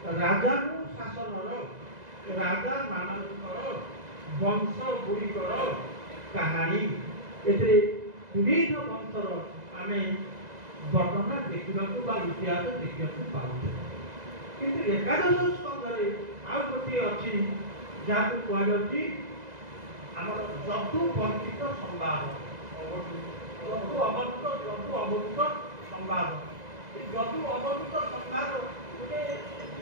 ରାଜାକୁ ଶାସନର ରାଜାମାନଙ୍କର ବଂଶ ଗୁଡ଼ିକର କାହାଣୀ। ଏଥିରେ ବିବିଧ ବଂଶର ଆମେ ବର୍ଣ୍ଣନା ଦେଖିବାକୁ ବା ଇତିହାସ ଦେଖିବାକୁ ପାଉଛୁ। କିନ୍ତୁ ଏକାଦଶ ସ୍କନ୍ଧରେ ଆଉ ଗୋଟିଏ ଅଛି ଯାହାକୁ କୁହାଯାଉଛି ଆମର ଯଦୁ ବର୍ଣ୍ଣିତ ସମ୍ବାଦ, ଯଦୁ ଅବଧୂତ ସମ୍ବାଦ। ଏ ଯଦୁ ଅବଧୂତ ସମ୍ବାଦ ଗୋଟେ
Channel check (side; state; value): left; late; 2.0 ms